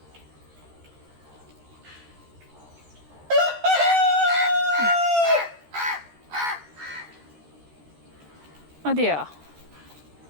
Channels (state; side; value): late; left; 13 ms